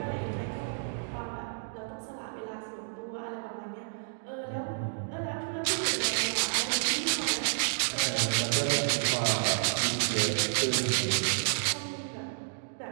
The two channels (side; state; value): left; silent; digital silence